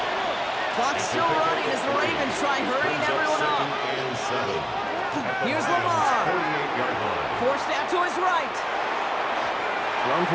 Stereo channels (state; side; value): identical; both; correlation 1.00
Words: Clock's still running as the Ravens try hurrying everyone up. Here's Lamar. Forced out to his right. Thrown